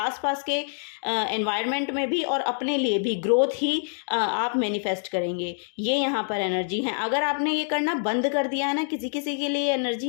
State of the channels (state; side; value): silent; right; digital silence